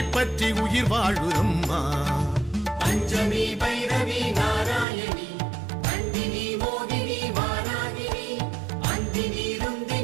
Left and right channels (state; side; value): drops out; left; at 4.9 s